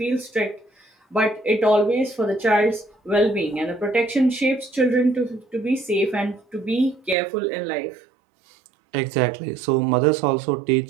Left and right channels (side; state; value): left; drops out; at 7.2 s